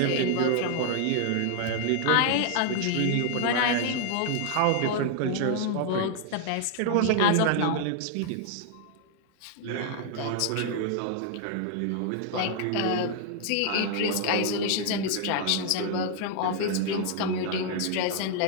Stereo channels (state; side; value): different; both; correlation 0.00